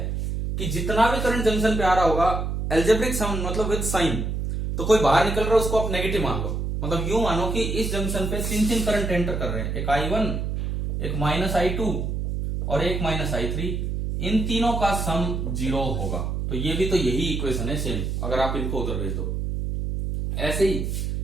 कि जितना भी करंट जंक्शन पे आ रहा होगा, algebraic sum मतलब विद साइन, तो कोई बाहर निकल रहा है उसको आप नेगेटिव मान लो। मतलब यूं मानो कि इस जंक्शन पे तीन करंट एंटर कर रहे हैं, एक I1, एक माइनस I2 और एक माइनस I3। इन तीनों का सम जीरो होगा। तो ये भी तो यही इक्वेशन है सेम, अगर आप इनको उधर भेज दो। ऐसे ही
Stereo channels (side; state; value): right; noise; hum, 2 dB below the sound